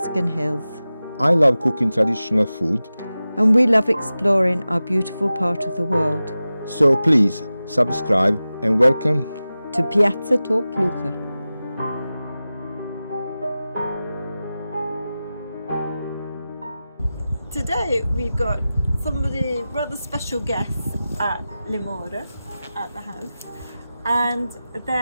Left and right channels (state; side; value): inverted; both; correlation -0.95